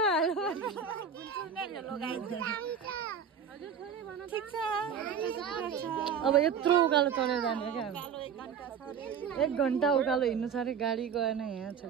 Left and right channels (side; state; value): left; quieter; 7.1 dB